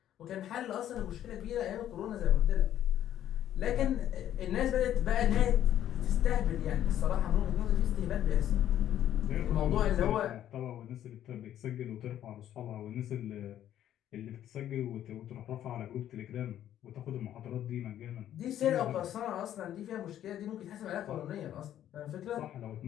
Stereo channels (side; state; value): right; quieter; 11.4 dB